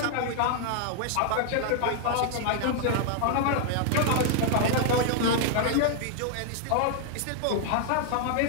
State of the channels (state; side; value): different; both; correlation 0.00